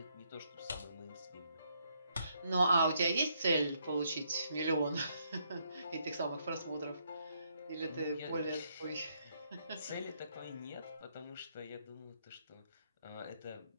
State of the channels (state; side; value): inverted; both; correlation -0.73